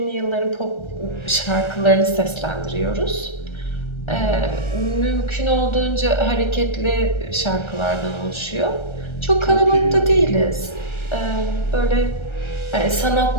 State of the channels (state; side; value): late; right; 1.3 ms